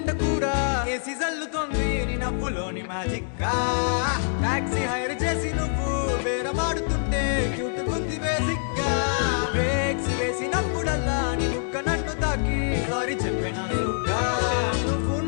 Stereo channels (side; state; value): right; silent; digital silence